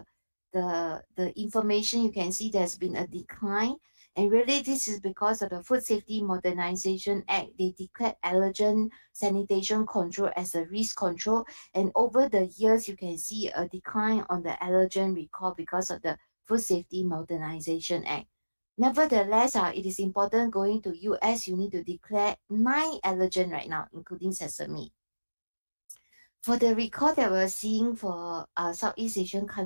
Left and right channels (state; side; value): inverted; both; correlation -1.00